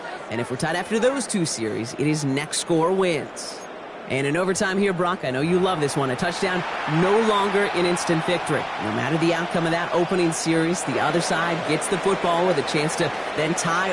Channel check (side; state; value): both; identical; correlation 1.00